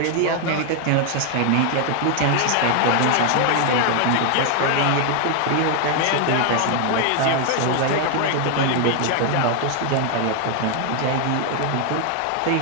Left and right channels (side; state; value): both; different; correlation 0.00